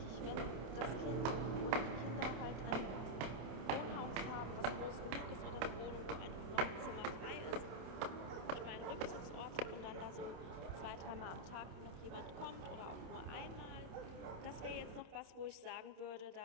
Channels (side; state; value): left; late; 27 ms